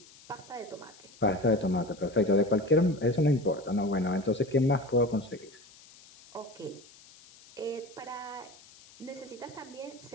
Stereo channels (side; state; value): left; noise; hiss, 23 dB below the sound